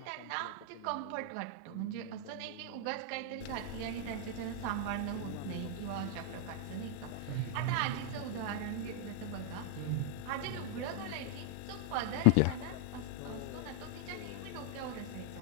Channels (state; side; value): different; both; correlation 0.00